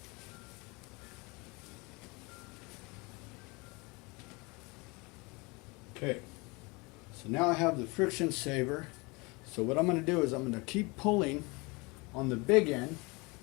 Okay, so now I have the friction saver. So what I'm going to do is I'm going to keep pulling on the big end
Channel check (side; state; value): right; quieter; 27.0 dB